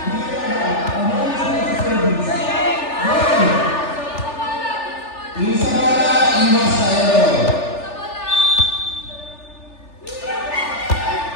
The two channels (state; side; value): late; right; 3.4 ms